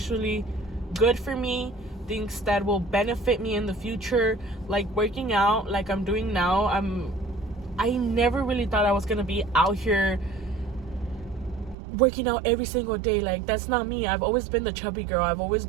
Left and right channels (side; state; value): left; drops out; at 11.8 s